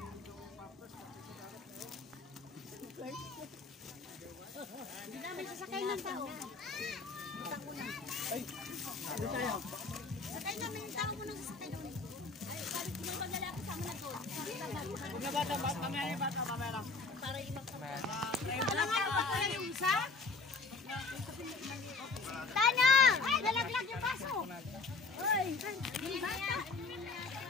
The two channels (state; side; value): quieter; right; 4.1 dB